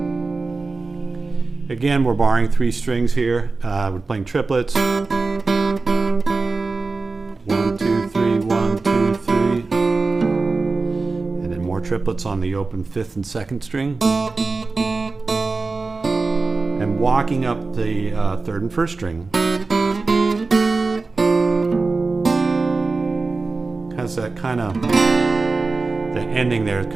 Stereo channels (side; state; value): left; quieter; 3.8 dB